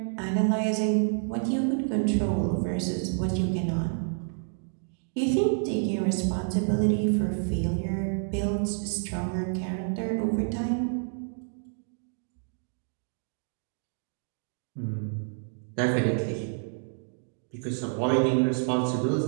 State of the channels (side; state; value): left; silent; 59 dB below the other